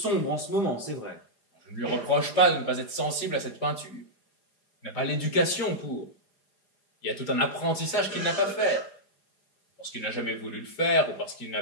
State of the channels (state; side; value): late; right; 4.9 ms